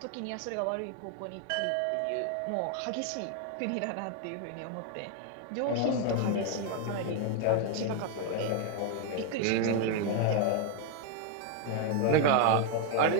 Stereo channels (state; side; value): different; both; correlation 0.01